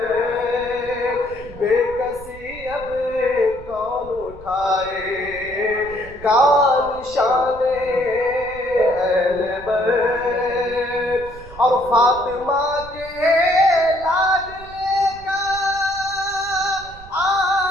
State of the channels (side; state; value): right; noise; rumble, 18 dB below the sound